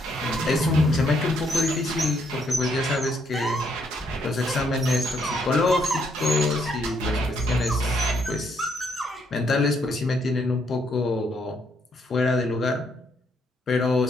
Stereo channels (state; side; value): normal; both; correlation 0.72